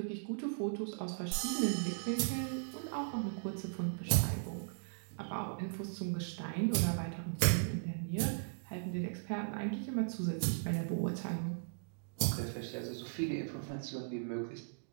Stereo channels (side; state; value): left; silent; digital silence